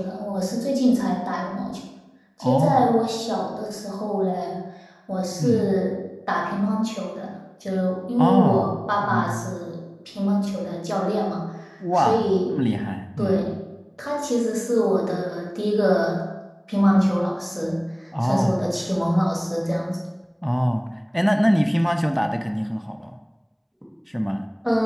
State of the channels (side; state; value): both; identical; correlation 1.00